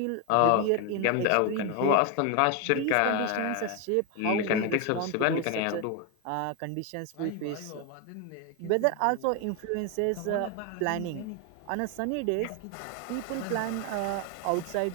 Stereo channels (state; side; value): different; both; correlation 0.01